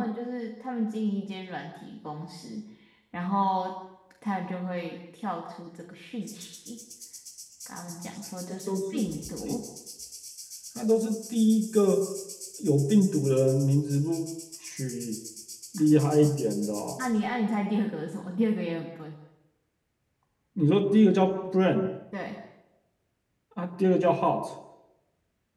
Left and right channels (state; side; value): identical; both; correlation 1.00